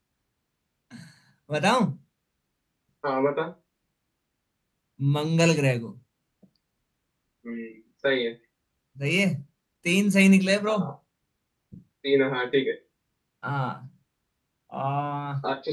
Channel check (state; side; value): identical; both; correlation 1.00